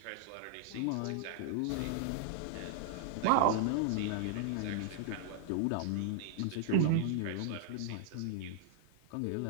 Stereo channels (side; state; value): both; different; correlation -0.01